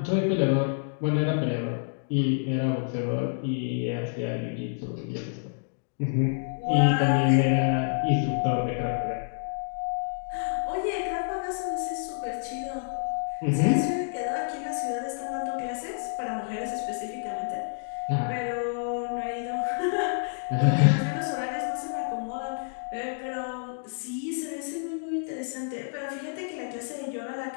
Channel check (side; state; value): right; silent; digital silence